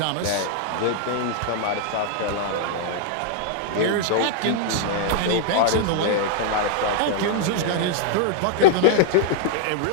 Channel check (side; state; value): both; different; correlation -0.01